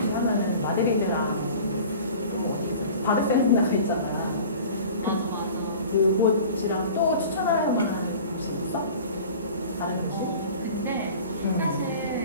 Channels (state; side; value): inverted; both; correlation -0.42